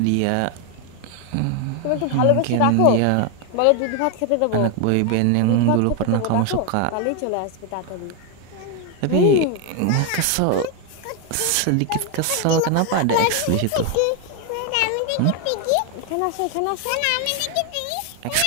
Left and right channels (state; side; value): different; both; correlation 0.01